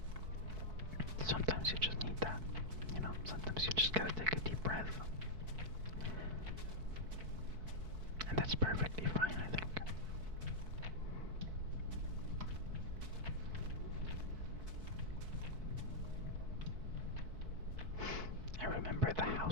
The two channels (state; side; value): late; left; 4.6 ms